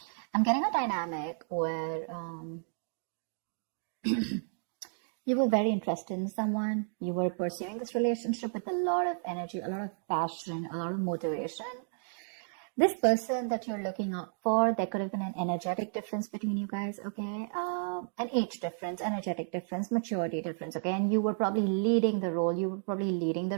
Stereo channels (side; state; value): left; silent; digital silence